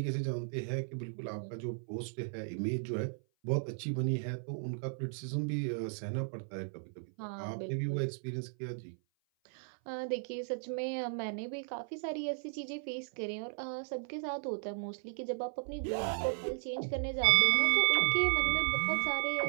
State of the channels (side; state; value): left; silent; 54 dB below the other